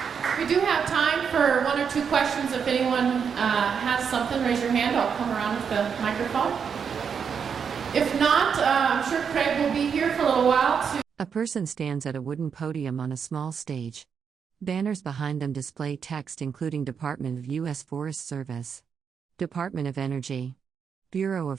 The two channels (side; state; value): left; quieter; 6.8 dB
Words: We do have time for one or two questions. If anyone has something, raise your hand. I'll come around with the microphone. If not, I'm sure Craig will be here for a little while. A person stands at a wooden podium on a small stage. Banners behind them display text including Department of U.S. Forest Service, Department of Energy, Bureau